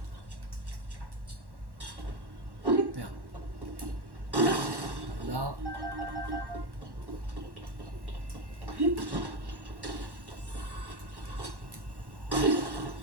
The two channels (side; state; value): left; late; 1.1 ms